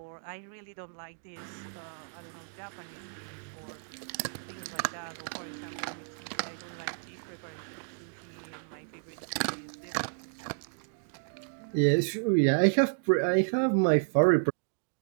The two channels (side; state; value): left; silent; digital silence